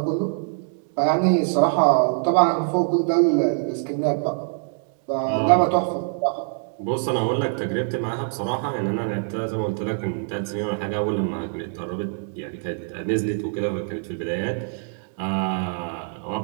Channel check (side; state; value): left; silent; 62 dB below the other